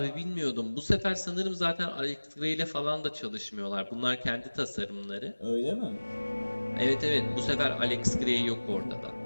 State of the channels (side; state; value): both; inverted; correlation -1.00